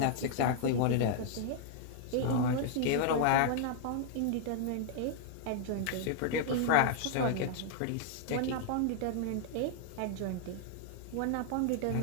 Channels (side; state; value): both; different; correlation -0.01